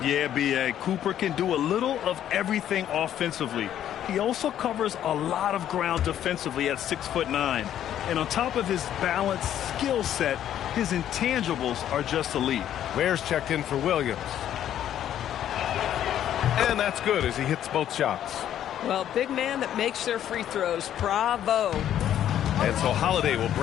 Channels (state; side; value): quieter; right; 10.9 dB